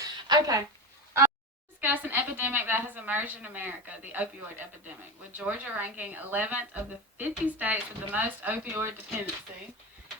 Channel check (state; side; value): normal; both; correlation 0.23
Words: Okay. Discuss an epidemic that has emerged in America, the opioid epidemic, with Georgia ranking 11th of the 50 states with the most opioid dependency